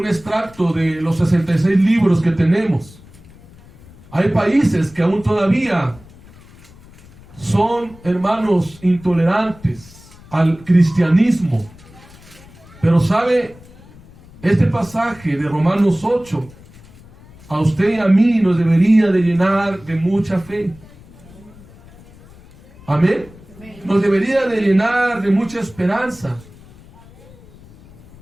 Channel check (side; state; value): left; noise; rumble, 23 dB below the sound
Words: extracto de los 66 libros que tenemos. Hay países que aún todavía son, hermanos, intolerantes al cristianismo. Pero sabe, este pasaje de Romanos 8, a usted y a mí nos debería de llenar de mucha fe. Amén. Nos debería de llenar de mucha esperanza.